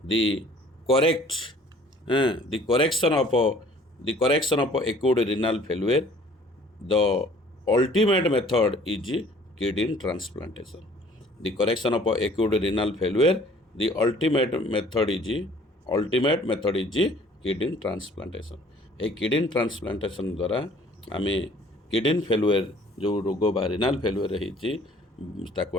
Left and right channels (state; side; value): normal; both; correlation 0.54